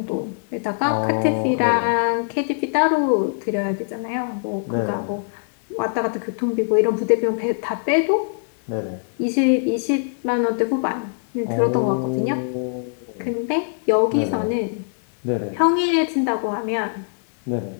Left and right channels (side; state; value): right; silent; digital silence